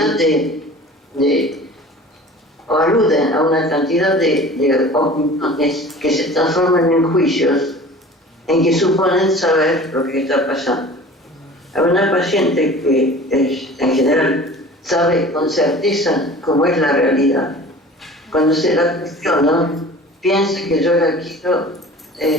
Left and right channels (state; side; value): normal; both; correlation 0.42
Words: o aluden a una cantidad de opiniones que se transforman en juicios en que suponen saber lo que está pasando. Hay una paciente que en general sabe con certeza cómo es la realidad. Cuando se la cuestiona, piensa que yo la quiero